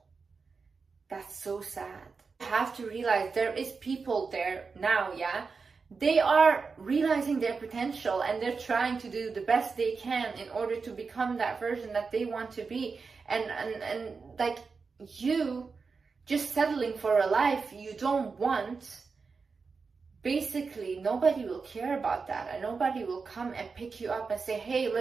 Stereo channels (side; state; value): left; quieter; 4.8 dB